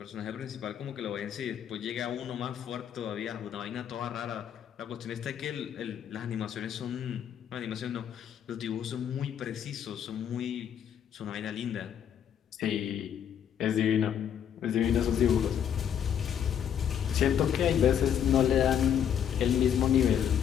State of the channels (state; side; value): quieter; right; 9.0 dB